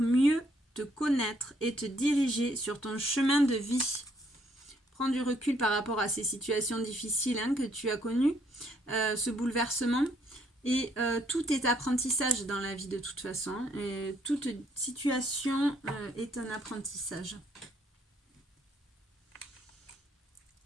mieux te connaître et te diriger sur ton chemin de vie. Prends du recul par rapport à ces situations difficiles, hein, que tu as connues, ce bouleversement. Et tout est apprentissage dans la vie de toute façon. Et toute situation est un apprentissage.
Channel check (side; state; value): both; normal; correlation 0.69